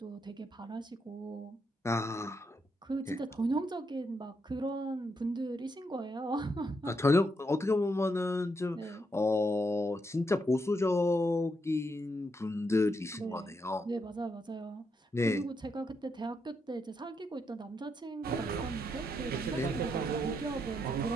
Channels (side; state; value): both; normal; correlation 0.80